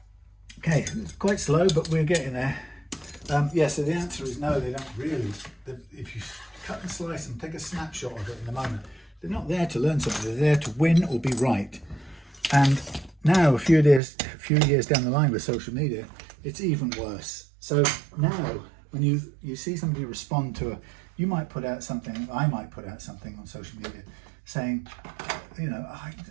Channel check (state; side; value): drops out; left; at 14.0 s